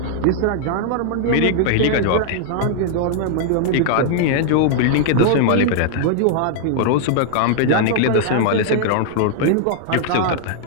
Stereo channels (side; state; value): both; different; correlation -0.01